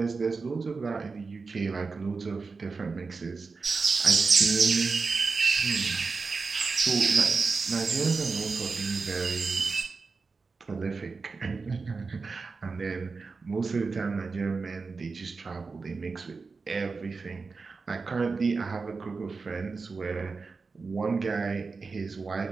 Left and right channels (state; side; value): quieter; left; 4.4 dB